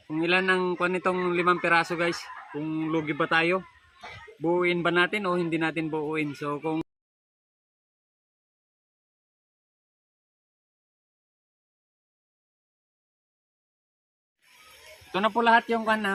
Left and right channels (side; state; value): both; identical; correlation 1.00